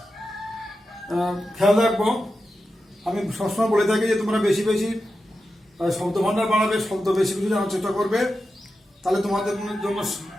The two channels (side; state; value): both; normal; correlation 0.90